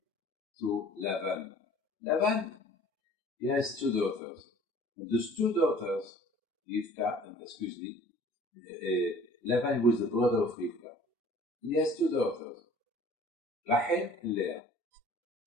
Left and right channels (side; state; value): both; normal; correlation 0.50